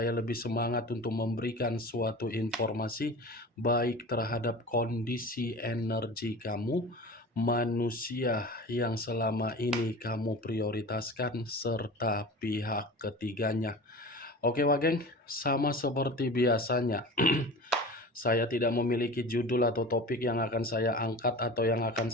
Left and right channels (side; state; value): both; normal; correlation 0.35